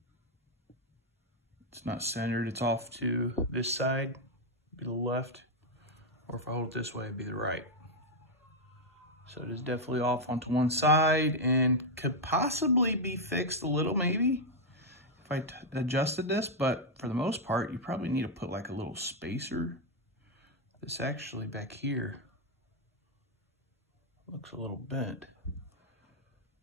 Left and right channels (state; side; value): normal; both; correlation 0.00